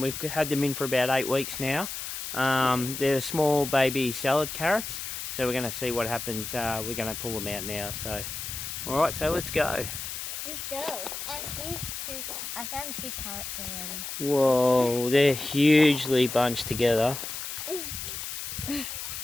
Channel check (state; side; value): noise; left; hiss, 6 dB below the sound